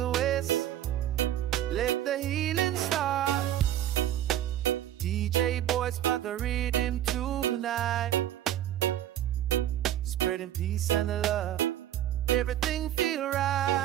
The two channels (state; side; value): quieter; left; 11.9 dB